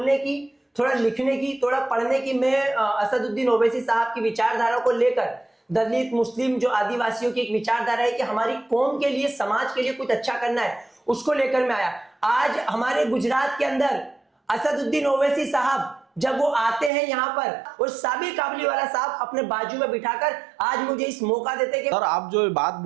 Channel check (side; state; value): left; drops out; at 16.9 s